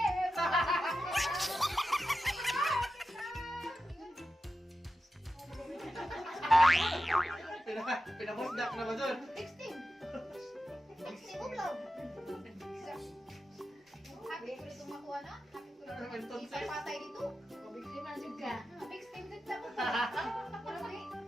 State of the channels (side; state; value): both; normal; correlation 0.91